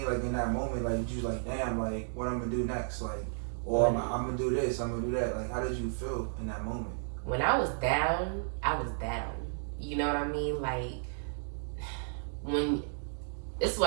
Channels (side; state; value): left; silent; digital silence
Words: Like in that moment, like you like, damn, like what I'm gonna do next? Like, or I'm gonna do this, I'm gonna do that. Like, how did you feel in that moment? When I was down, I was down. You know what I mean? Like, this is